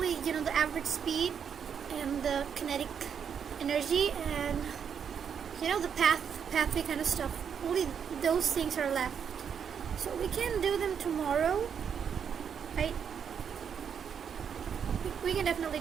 the average speed and the kinetic energy and the pathway kind of stuff. Only those things are left. So we can do them tomorrow, right? We can definitely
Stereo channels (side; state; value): left; quieter; 7.5 dB